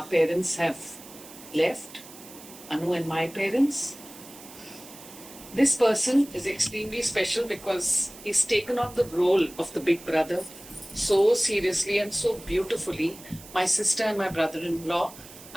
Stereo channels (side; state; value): right; noise; hiss, 18 dB below the sound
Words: parents have left, Anu and my parents, this person is extremely special because he's taken on the role of the big brother so seriously and so beautifully. My sister and my brother-in-law,